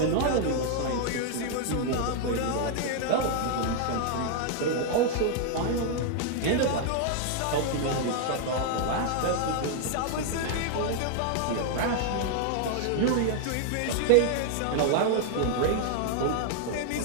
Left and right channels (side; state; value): both; different; correlation 0.00